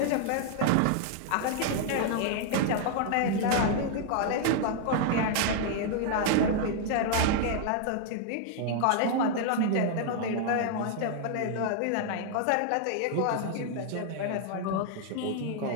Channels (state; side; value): different; both; correlation 0.00